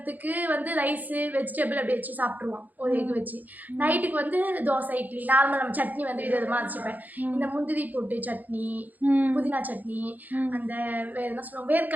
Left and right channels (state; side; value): late; left; 0.082 ms